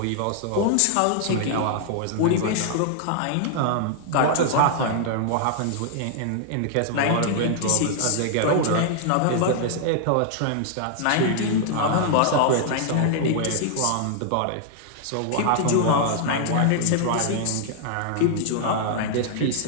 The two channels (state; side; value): different; both; correlation -0.01